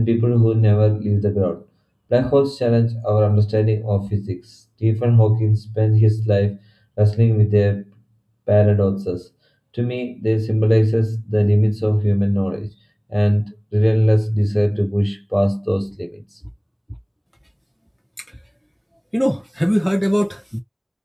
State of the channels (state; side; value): identical; both; correlation 1.00